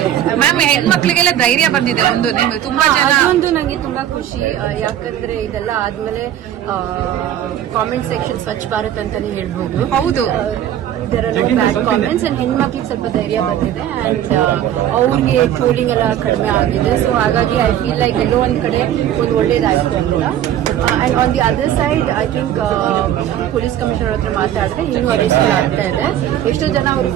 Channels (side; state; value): left; quieter; 11.2 dB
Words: ಮ್ಯಾಮ್, ಹೆಣ್ಮಕ್ಳಿಗೆಲ್ಲ ಧೈರ್ಯ ಬಂದಿದೆ ಒಂದು, ನೀವು ತುಂಬಾ ಜನ ಒಂದು ನಂಗೆ ತುಂಬಾ ಖುಷಿ. ಯಾಕಂದ್ರೆ ಇದೆಲ್ಲ ಆದ್ಮೇಲೆ ಕಾಮೆಂಟ್ ಸೆಕ್ಷನ್ ಸ್ವಚ್ಛ ಭಾರತ್ ಅಂತಾನೆ ಹೇಳ್ಬೋದು. ಹೌದು, ಬ್ಯಾಡ್ ಕಾಮೆಂಟ್ಸ್ ಅಂಡ್ ಹೆಣ್ಮಕ್ಳಿಗೆ ಸ್ವಲ್ಪ ಧೈರ್ಯ ಬಂದಿದೆ ಅಂಡ್ ಅವ್ರಿಗೆ ಟ್ರೋಲಿಂಗ್ ಎಲ್ಲ ಕಡಿಮೆ ಆಗಿದೆ. ಸೊ ಹಾಗಾಗಿ ಐ ಫೀಲ್ ಲೈಕ್ ಎಲ್ಲೋ ಒಂದ್ ಕಡೆ ಒಂದು ಒಳ್ಳೇದಾಯ್ತು ಅಂತ. And on the other side I think police commissioner ಹತ್ರ ಮಾತಾಡಿದ್ರೆ ಇನ್ನೂ ಅರೆಸ್ಟ್ ಆಗ್ತಾ ಇದೆ. ಎಷ್ಟೋ ಜನ ಅವರು